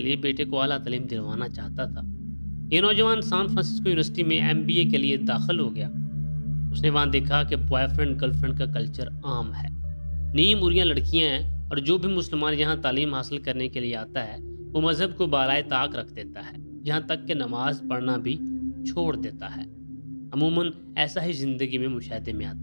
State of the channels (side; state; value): both; inverted; correlation -1.00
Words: بیٹے کو اعلیٰ تعلیم دلوانا چاہتا تھا۔ یہ نوجوان سان فرانسسکو یونیورسٹی میں MBA کے لیے داخل ہو گیا۔ اس نے وہاں دیکھا کہ بوائے فرینڈ گرل فرینڈ کا کلچر عام ہے، نیم اریاں لڑکیاں ہیں، اور جو بھی مسلمان یہاں تعلیم حاصل کرنے کے لیے آتا ہے وہ مذہب کو بالائے طاق رکھ دیتا ہے، یہاں تک کہ نماز پڑھنا بھی چھوڑ دیتا ہے۔ عموماً ایسا ہی زندگی میں مشاہدے میں